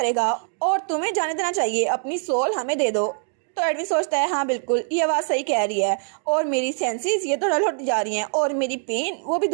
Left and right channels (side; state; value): left; silent; digital silence